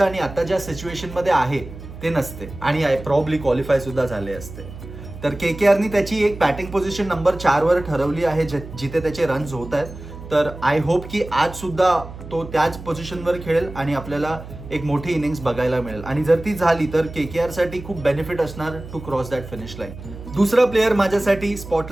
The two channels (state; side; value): noise; right; hum, 13 dB below the sound